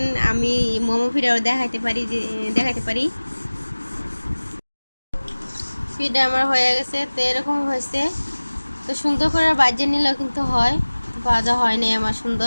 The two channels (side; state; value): both; inverted; correlation -1.00